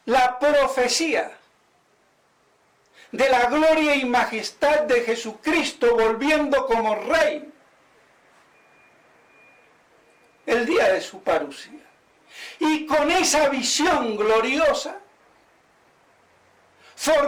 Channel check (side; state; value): both; identical; correlation 1.00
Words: la profecía de la gloria y majestad de Jesucristo volviendo como Rey el día de su parucía. Y con esa visión gloriosa,